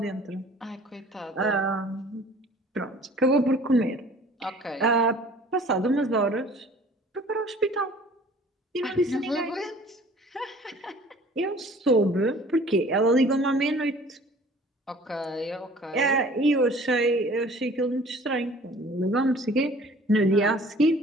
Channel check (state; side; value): normal; both; correlation 0.50